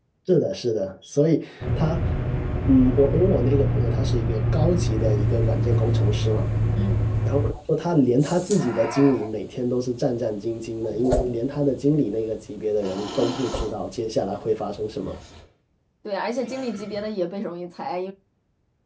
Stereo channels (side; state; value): both; identical; correlation 1.00